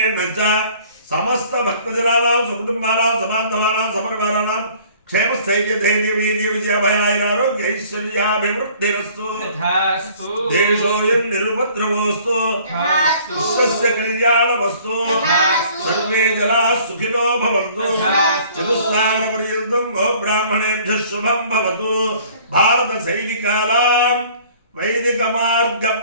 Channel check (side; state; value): both; inverted; correlation -0.53